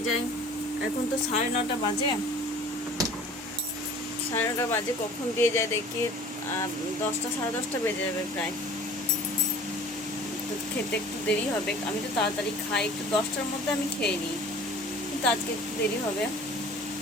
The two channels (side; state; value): both; normal; correlation 0.46